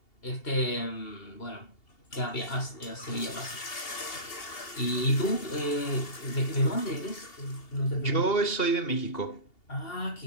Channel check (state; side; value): late; right; 2.8 ms